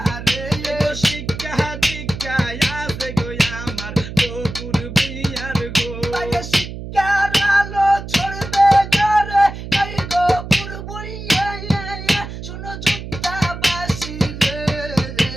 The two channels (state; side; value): noise; right; hum, 9 dB below the sound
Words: রে এই গো শিক্ষা দীক্ষা আছে গো আমার গোপুর ভুইয়ার গো তাকে শিক্ষার আলো ছড়বে ঘরে এই গোপুর ভুইয়া শুনো যোদ্ধাবাসী রে